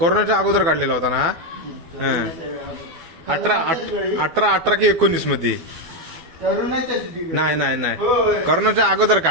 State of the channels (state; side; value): late; left; 12 ms